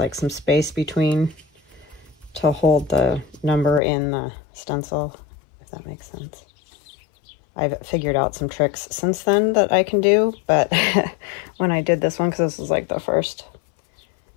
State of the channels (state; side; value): drops out; right; at 3.8 s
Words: some space between to hold the number in the stencil, if that makes sense. I've figured out some tricks since then that I can do, but when I did this one, because this was like the first